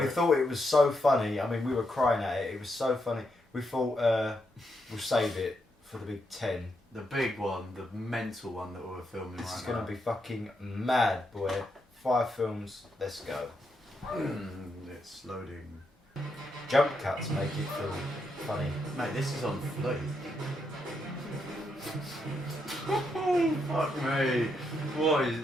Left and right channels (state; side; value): normal; both; correlation 0.81